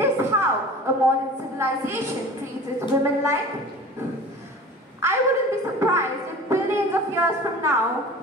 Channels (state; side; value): normal; both; correlation 0.40